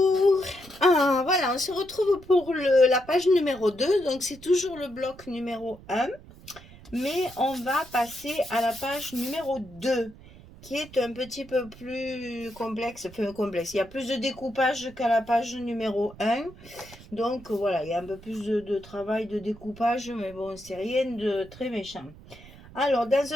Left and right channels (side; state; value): right; noise; rumble, 20 dB below the sound